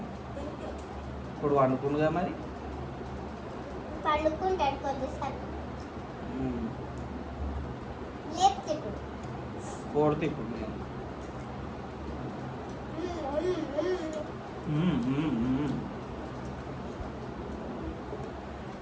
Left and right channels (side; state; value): both; identical; correlation 1.00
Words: ఇప్పుడు వండుకుండుగా మరి. పండుకుంటాడు కొద్దిసారి. కోడితే ఇప్పుడు నేను